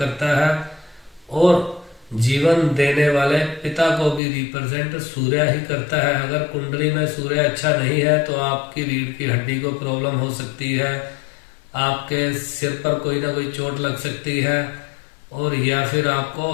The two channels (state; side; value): drops out; right; at 4.2 s